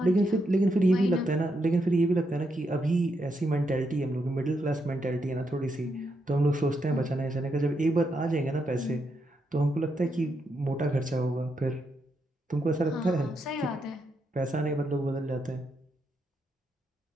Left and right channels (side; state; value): both; normal; correlation 0.81